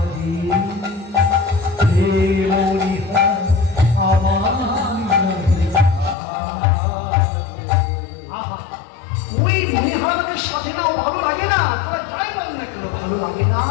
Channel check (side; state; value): right; drops out; at 6.2 s